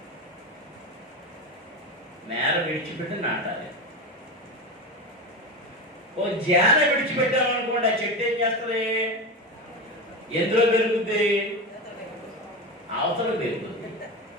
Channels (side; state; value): both; normal; correlation 0.21